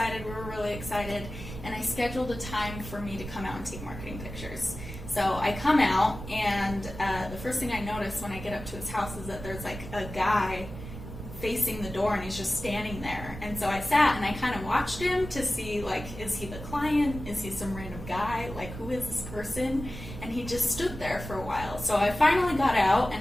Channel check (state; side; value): noise; right; rumble, 11 dB below the sound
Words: We were really excited, and I scheduled a time for me to come out and take marketing pictures. So I come out, and the first thing I notice when I get up to his house is that there's like a guy facing the door, and he's just standing there. And so I sat and I kind of watched him to see, like, is he the client? Is he some random guy? Like, who is this person? And he just stood there for a while. So I finally got out